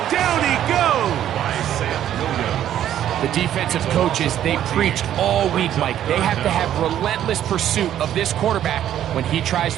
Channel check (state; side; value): quieter; left; 11.1 dB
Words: down he goes. The defensive coaches, they preached all week, Mike. They have to have relentless pursuit of this quarterback when he tries